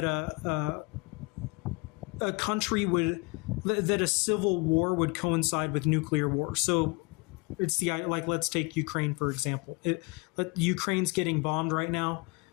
a country that a civil war would coincide with nuclear war. So it's let's take Ukraine, for example. Ukraine's getting bombed right now,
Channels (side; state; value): right; quieter; 29.3 dB